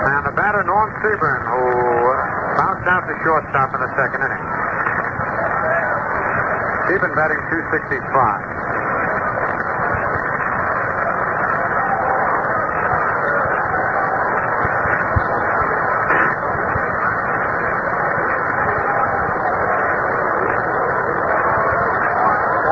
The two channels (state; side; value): identical; both; correlation 1.00